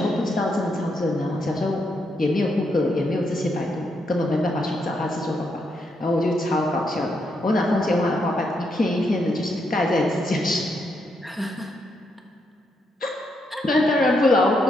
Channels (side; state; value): both; normal; correlation 0.79